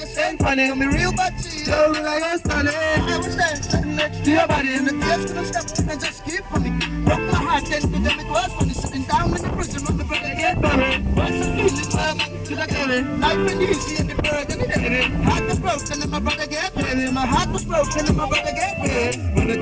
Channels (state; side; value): identical; both; correlation 1.00